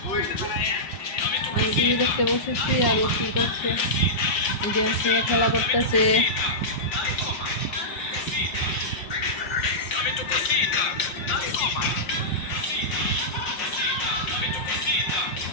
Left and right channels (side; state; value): right; late; 5.8 ms